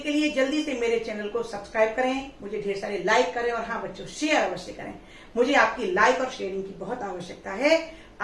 के लिए जल्दी से मेरे चैनल को सब्सक्राइब करें, मुझे ढेर सारे लाइक करें और हाँ बच्चों, शेयर अवश्य करें। मुझे आपकी लाइक और शेयरिंग की बहुत आवश्यकता है।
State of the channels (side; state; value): both; identical; correlation 1.00